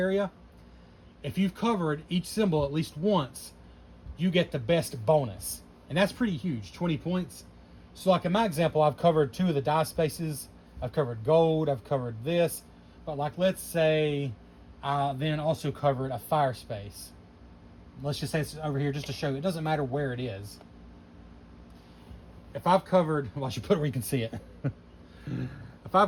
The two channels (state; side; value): identical; both; correlation 1.00